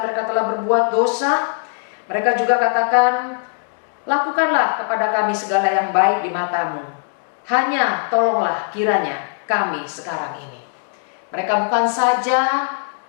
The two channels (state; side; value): silent; right; digital silence